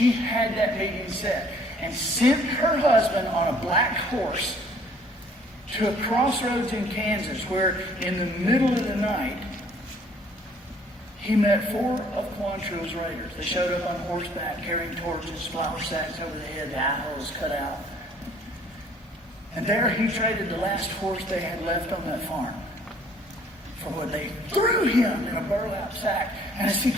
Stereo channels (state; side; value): normal; both; correlation 0.58